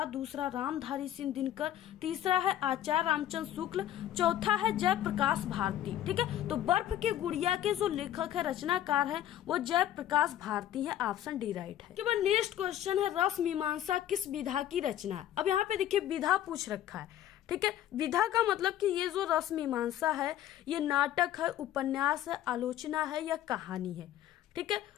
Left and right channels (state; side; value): quieter; right; 12.0 dB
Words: दूसरा रामधारी सिंह दिनकर, तीसरा है आचार्य रामचंद्र शुक्ल, चौथा है जयप्रकाश भारती, ठीक है। तो बर्फ की गुड़िया के जो लेखक है, रचनाकार है, वो जयप्रकाश भारती है, ऑप्शन डी राइट है। के बाद नेक्स्ट क्वेश्चन है रस मीमांसा किस विधा की रचना है? अब यहाँ पे देखिए विधा पूछ रखा है, ठीक है। विधा का मतलब कि ये जो रस मीमांसा है ये नाटक है, उपन्यास है, आलोचना है या कहानी है, ठीक है।